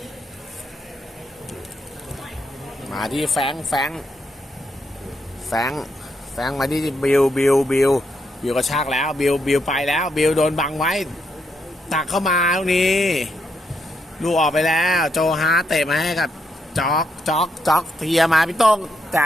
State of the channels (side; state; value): both; normal; correlation 0.79